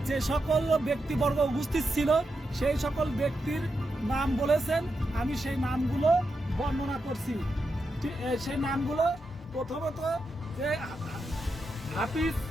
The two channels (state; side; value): normal; both; correlation 0.86